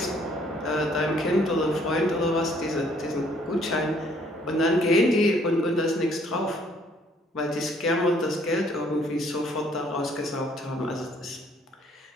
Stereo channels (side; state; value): both; normal; correlation 0.63